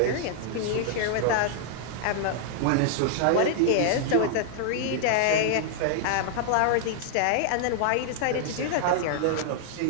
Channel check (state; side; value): different; both; correlation -0.01